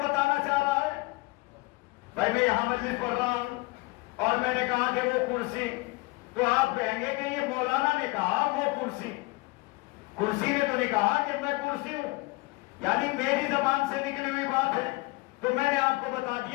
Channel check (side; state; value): right; quieter; 23.3 dB